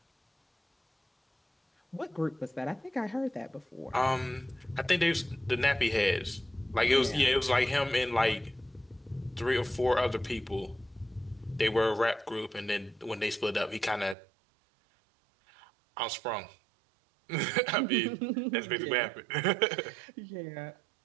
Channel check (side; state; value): left; drops out; at 14.2 s